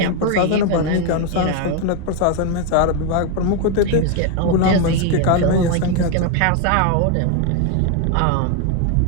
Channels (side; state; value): both; different; correlation 0.01